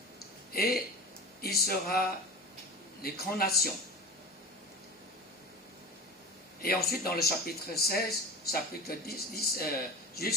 Et il sera les grandes nations. Et ensuite, dans le chapitre 16, chapitre 10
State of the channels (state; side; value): normal; both; correlation 0.32